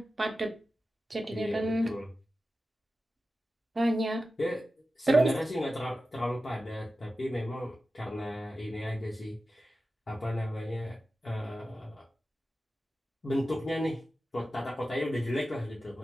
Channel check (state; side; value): normal; both; correlation 0.93